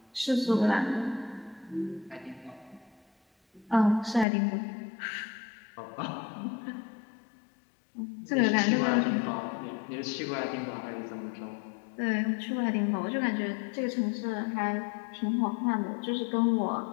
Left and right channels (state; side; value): drops out; right; at 4.2 s